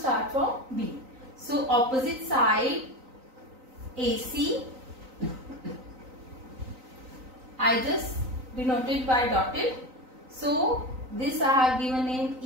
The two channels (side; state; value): left; late; 3.9 ms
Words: from B. So opposite side AC, I just denoted by dotted. So this I have given name